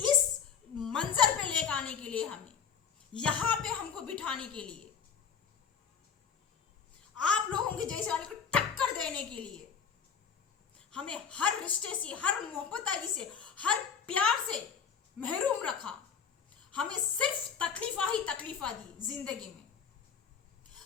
मंजर पे लेकर आने के लिए, हमें यहां पे हमको बिठाने के लिए, आप लोगों के जैसे वाले को टक्कर देने के लिए, हमें हर रिश्ते से, हर मोहब्बत से, हर प्यार से महरूम रखा। हमें सिर्फ तकलीफा ही तकलीफा दी जिंदगी में।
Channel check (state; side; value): quieter; right; 6.9 dB